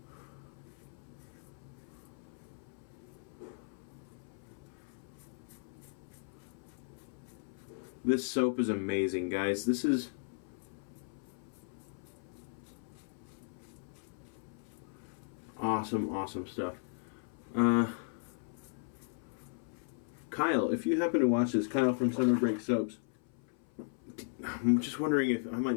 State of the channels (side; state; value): right; silent; 53 dB below the other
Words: this soap is amazing, guys. This is awesome stuff. Kyle, if you happen to watch this, Kyle from Summer Break Soaps, I'm just wondering if I might